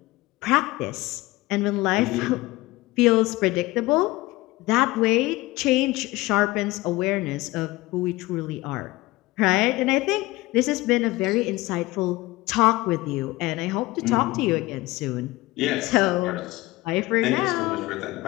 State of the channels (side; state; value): right; quieter; 20.0 dB